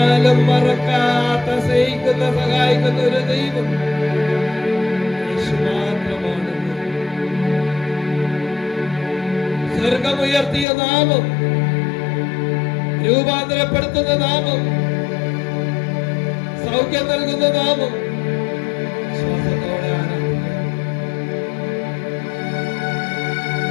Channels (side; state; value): right; drops out; at 10.7 s